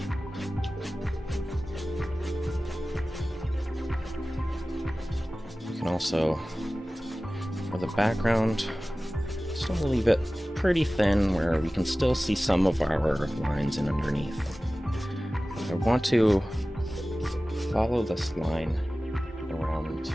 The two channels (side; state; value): both; normal; correlation 0.97